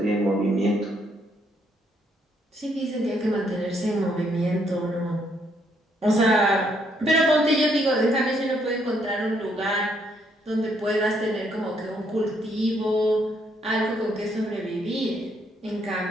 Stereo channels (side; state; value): both; normal; correlation 0.71